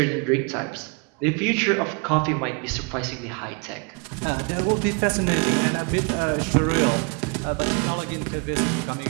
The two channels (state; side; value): quieter; left; 33.2 dB